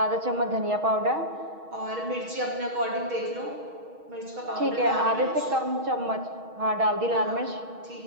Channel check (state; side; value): late; left; 6.3 ms